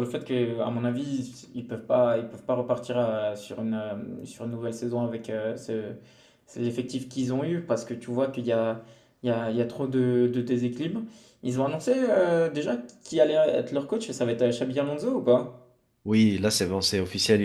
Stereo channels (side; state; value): both; identical; correlation 1.00